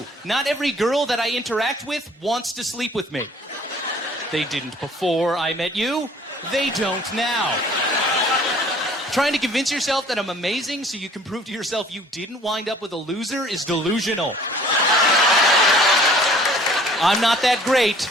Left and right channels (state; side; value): normal; both; correlation 0.53